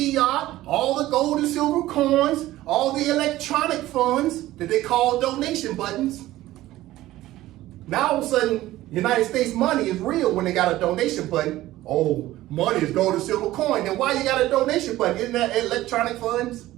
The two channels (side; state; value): left; quieter; 15.8 dB